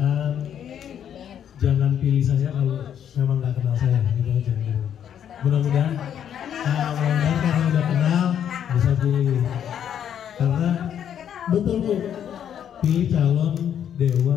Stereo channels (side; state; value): right; quieter; 9.3 dB